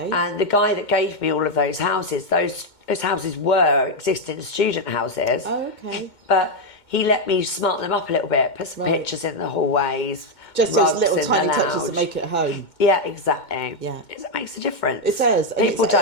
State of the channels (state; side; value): late; right; 2.2 ms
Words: And the guy that gave me all of those houses, those houses were existing student houses. Oh, okay. But he let me smart them up a little bit, put some pictures in the hallways. Just those little tiny touches that make it home. Yeah, exactly. Yeah. It makes a difference. It does. People